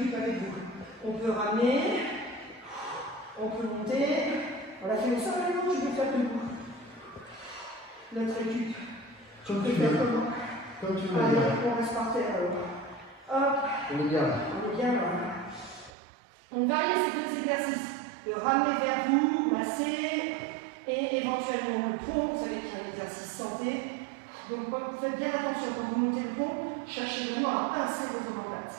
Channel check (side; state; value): left; drops out; at 15.9 s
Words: avec vous. On peut ramener, on peut monter. On l'a fait au sol, non, je vais faire debout. Notre récup. Comme Tu tu peux faire veux. comment? Comme tu veux. Allez, on reste par terre alors. Hop, On est bien là. on est bien là. On varie ces deux exercices. De ramener vers vous, masser, et éventuellement le pont. Vous savez qu'il y a un exercice santé. Donc faites bien attention quand vous montez le pont, cherchez vraiment à pincer votre omoplate.